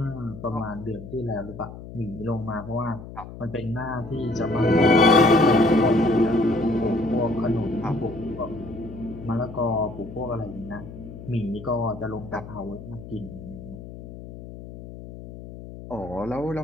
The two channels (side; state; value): left; noise; hum, 13 dB below the sound